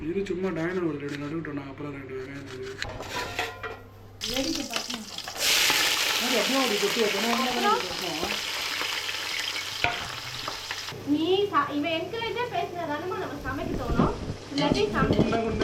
இது சும்மா டைனர் ஒரு 2 நடுவிட்டோம். நான் அப்புறம் 2 வெங்காயம் அப்படி கொட்டி வைக்கணும். நீ இவன் என்கரேஜாக பேசுனதானே நம்ம சமைக்க தோணும். இல்லாட்டி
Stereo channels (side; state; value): both; identical; correlation 1.00